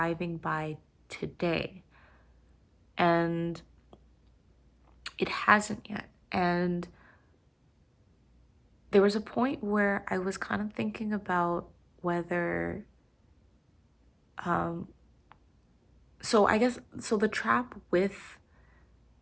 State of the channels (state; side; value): identical; both; correlation 1.00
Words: by today. And it hasn't yet. And there was a point where I was kind of thinking about whether so I guess so the trap with